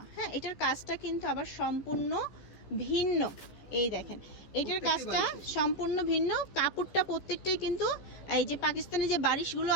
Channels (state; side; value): late; right; 14 ms